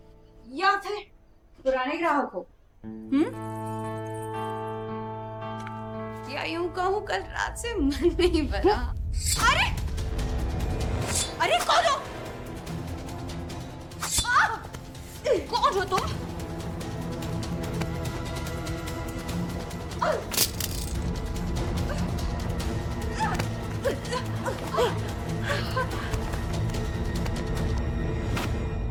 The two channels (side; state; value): both; identical; correlation 1.00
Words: या फिर पुराने ग्राहक हो? या यूं कहूं कल रात से मन नहीं भरा। अरे अरे कौन हो? कौन हो तुम?